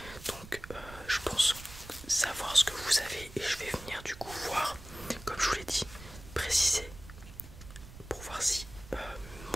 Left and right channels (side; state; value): right; noise; rumble, 16 dB below the sound